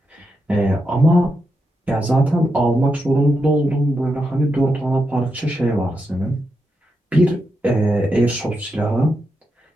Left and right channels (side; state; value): both; normal; correlation 0.85